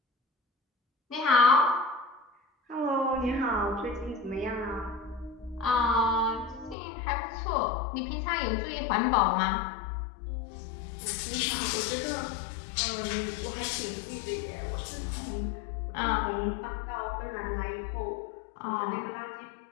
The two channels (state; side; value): drops out; right; at 6.8 s